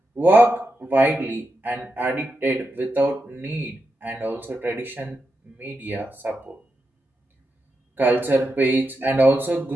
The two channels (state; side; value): normal; both; correlation 0.87